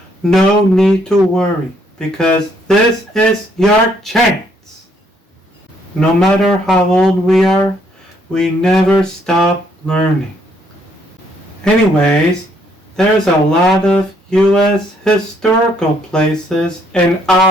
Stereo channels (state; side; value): normal; both; correlation 0.69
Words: no need to worry, because this is your chance. No matter how old we are, we never stop learning. Anyways, there's a lot of U.S. historical places in